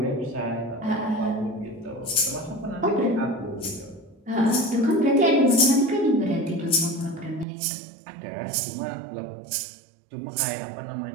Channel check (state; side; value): drops out; left; at 7.5 s